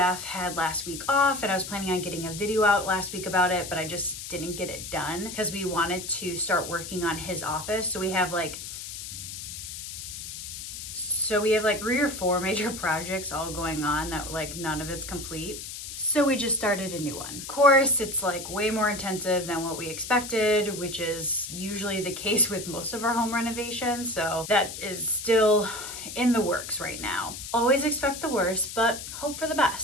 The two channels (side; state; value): left; noise; hiss, 9 dB below the sound